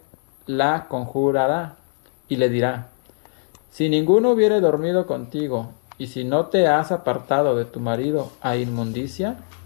la conjurará y le dirá: si ninguno hubiere dormido contigo, y si no te has apartado de tu marido a inmundicia,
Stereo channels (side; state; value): right; silent; 58 dB below the other